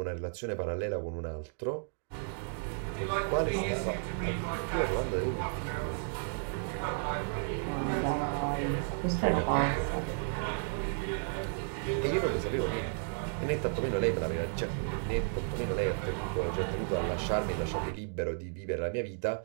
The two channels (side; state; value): left; silent; 56 dB below the other